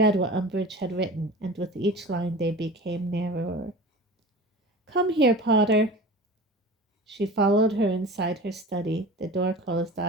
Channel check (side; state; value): both; normal; correlation 0.37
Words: what Umbridge had written, and with each line they became narrower. "Come here, Potter." She followed her inside her study. The door closed